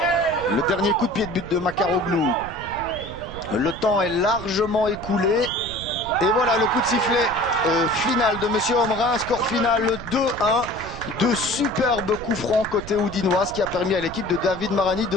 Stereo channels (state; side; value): noise; right; rumble, 13 dB below the sound